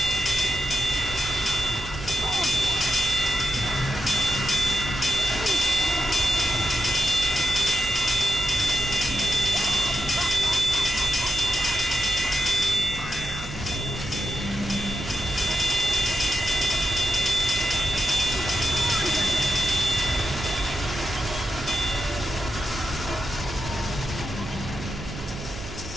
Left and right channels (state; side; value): noise; right; hum, 11 dB below the sound